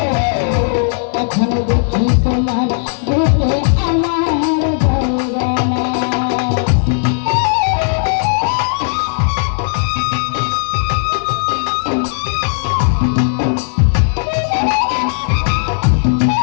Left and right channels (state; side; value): silent; right; digital silence